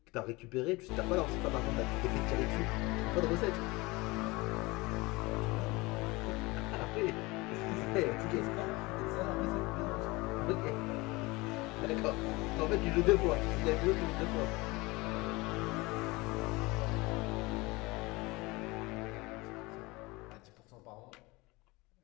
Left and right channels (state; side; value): quieter; right; 23.2 dB